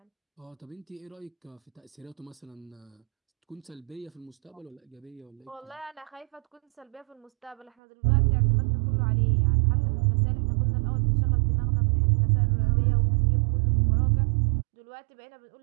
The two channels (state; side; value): drops out; left; at 7.7 s